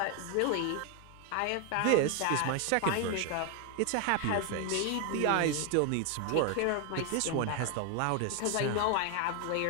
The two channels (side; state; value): both; different; correlation 0.01